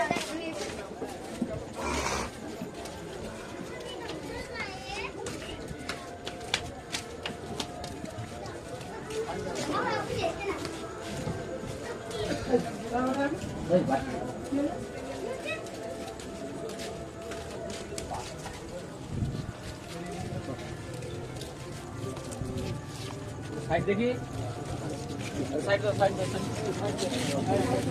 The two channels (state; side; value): identical; both; correlation 1.00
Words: সাইড দেখি, সাইড দাও, সাইড দাও,